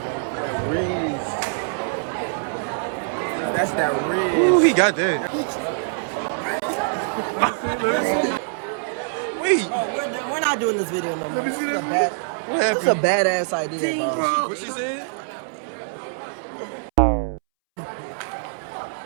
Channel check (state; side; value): silent; left; 63 dB below the other